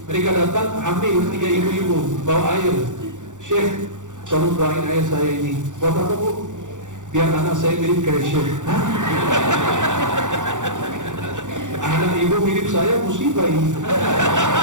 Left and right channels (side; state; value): left; late; 0.86 ms